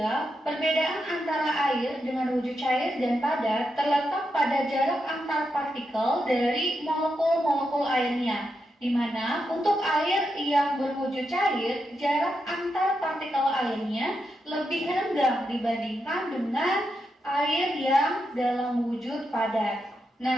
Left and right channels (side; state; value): both; normal; correlation 0.85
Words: perbedaan antara air dengan wujud cair dan padat terletak pada jarak antar partikel dari molekul-molekul airnya, di mana untuk air yang berwujud cair, jarak antar partikel airnya lebih rendah dibandingkan dengan air yang dalam wujud padat.